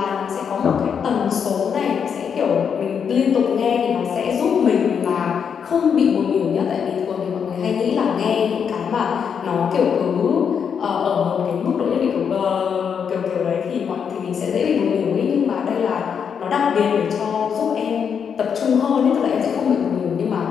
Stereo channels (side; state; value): right; quieter; 7.1 dB